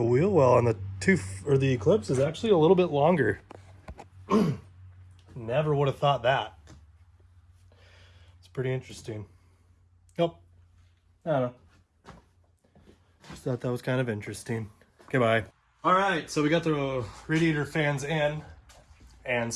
wheel well on the the Eclipse is actually a little bit longer. Never would have thought that. It's pretty interesting. Nope. I don't know. Just thought that was kind of interesting. Okay, bye. All right, so we got the radiator fans in and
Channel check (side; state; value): both; identical; correlation 1.00